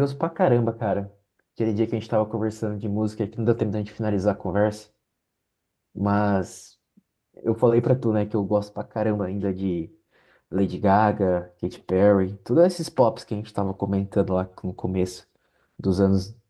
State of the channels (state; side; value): identical; both; correlation 1.00